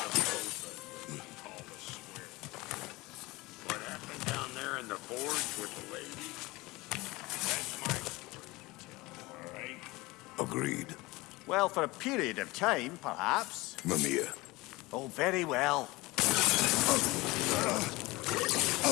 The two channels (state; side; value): quieter; right; 21.6 dB